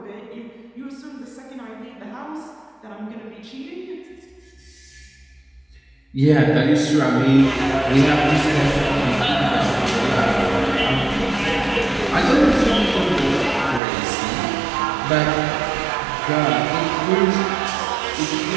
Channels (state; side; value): drops out; left; at 13.8 s